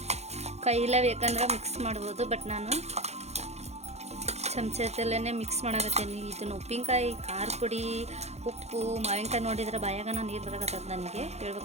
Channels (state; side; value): late; left; 0.31 ms